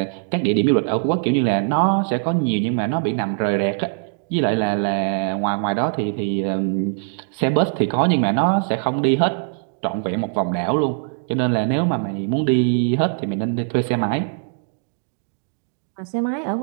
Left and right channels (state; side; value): silent; left; digital silence